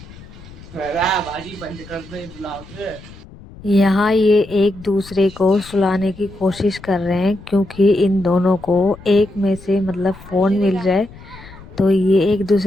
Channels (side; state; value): left; noise; rumble, 19 dB below the sound